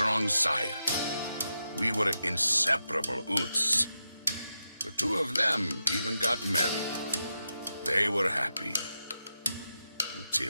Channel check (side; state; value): both; inverted; correlation -0.87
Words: Saya. We were inseparable Oots. The two of them even got married. They were happy.